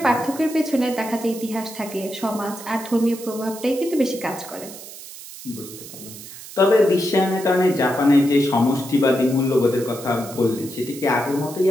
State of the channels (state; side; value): noise; right; hiss, 14 dB below the sound